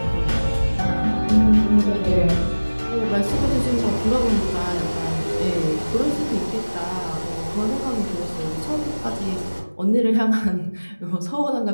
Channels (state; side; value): inverted; both; correlation -1.00